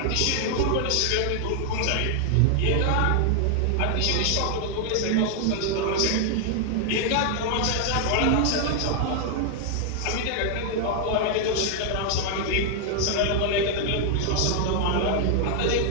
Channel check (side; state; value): both; different; correlation 0.00